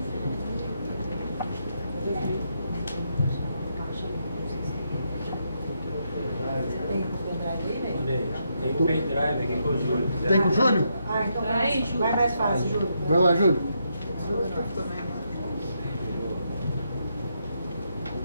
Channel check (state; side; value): inverted; both; correlation -0.80